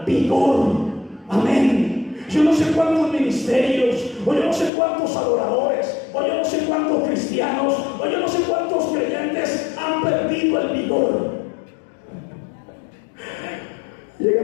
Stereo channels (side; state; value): right; drops out; at 4.7 s